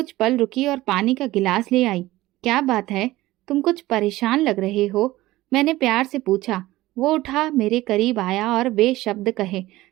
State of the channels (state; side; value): quieter; left; 17.4 dB